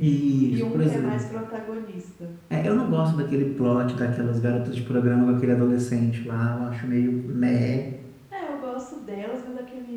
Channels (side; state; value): both; identical; correlation 1.00